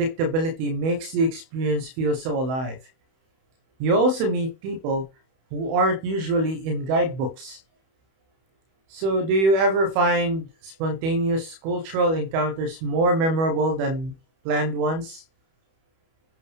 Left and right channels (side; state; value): left; late; 31 ms